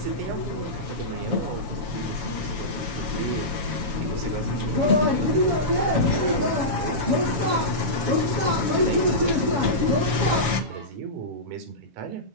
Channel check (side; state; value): left; late; 7.1 ms